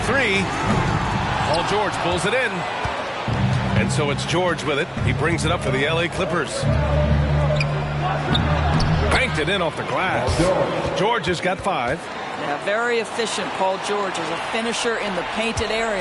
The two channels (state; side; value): identical; both; correlation 1.00